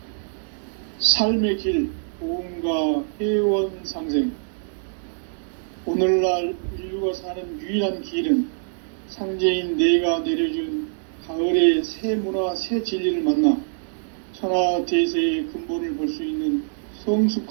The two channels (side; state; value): left; silent; 61 dB below the other